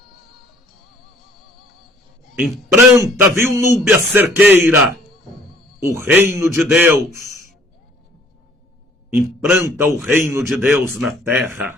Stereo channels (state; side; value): normal; both; correlation 0.58